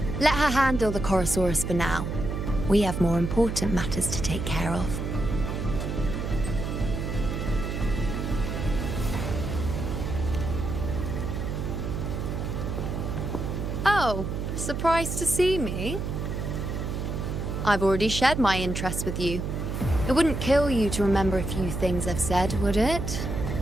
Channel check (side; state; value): right; noise; hum, 3 dB below the sound